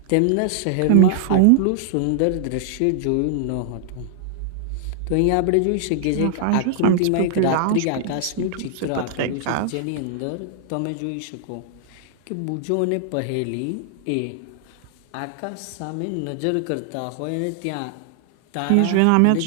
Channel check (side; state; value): both; different; correlation -0.01